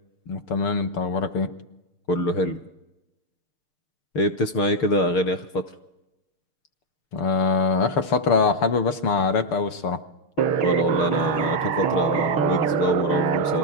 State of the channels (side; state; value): right; late; 6.6 ms